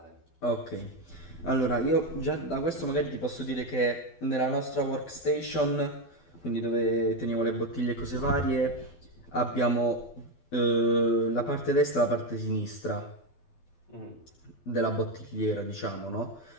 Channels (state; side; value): late; right; 12 ms